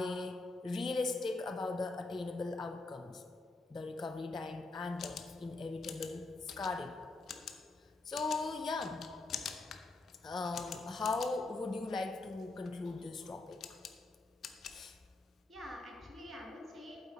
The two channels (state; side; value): quieter; right; 3.3 dB